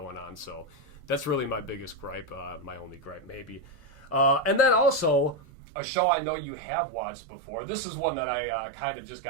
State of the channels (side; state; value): left; drops out; at 5.4 s